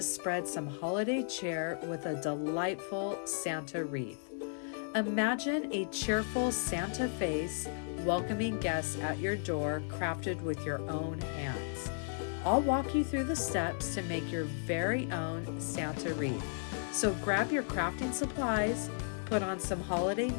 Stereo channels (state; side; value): silent; right; digital silence